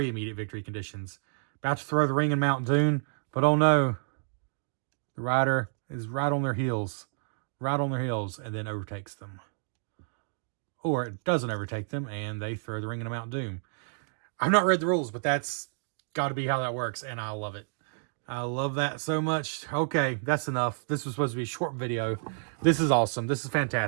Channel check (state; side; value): silent; left; digital silence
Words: immediate victory conditions. About to throw the ring in Mount Doom, but oh no, the rider is right on their heels, and then overtakes them. Or it doesn't overtake them, and they throw the ring into Mount Doom. I've not read the rules, but that's got to be how that works, and I love it. I love that so much. Okay, that's enough. This was supposed to be a short video. This is awesome. This is